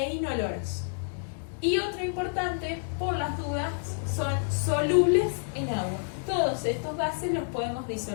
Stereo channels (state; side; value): silent; right; digital silence